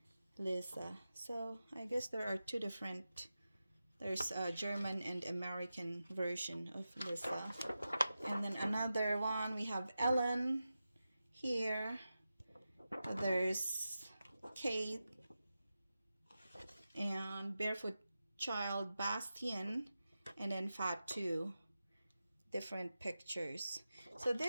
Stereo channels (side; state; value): both; inverted; correlation -0.92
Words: Lisa. So I guess there are two different, there's a German and American version of Lisa. And then another one, we have Ellen here. There's Kate and Barefoot Child Bastian, and then Fatou. Different pictures. So